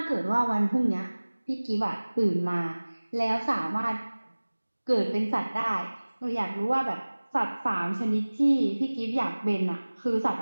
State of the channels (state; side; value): inverted; both; correlation -1.00